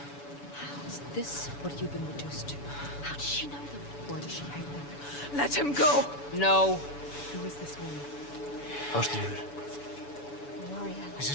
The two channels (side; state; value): right; late; 7.0 ms